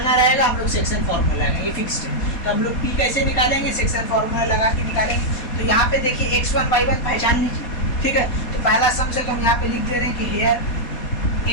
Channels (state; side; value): late; right; 4.2 ms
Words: रहेगा हम लोग सेक्शन फॉर्मूला लगाएंगे, ये फिक्स्ड है। तो हम लोग P कैसे निकालेंगे, सेक्शन फॉर्मूला लगा के निकालेंगे। तो यहाँ पे देखिए x1 y1 पहचान लीजिए, ठीक है। तो पहला सम से तो हम यहाँ पे लिख दे रहे हैं कि हेयर